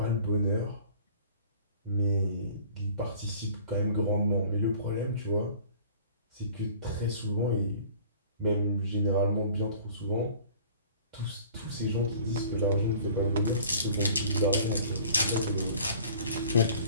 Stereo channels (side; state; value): both; inverted; correlation -0.49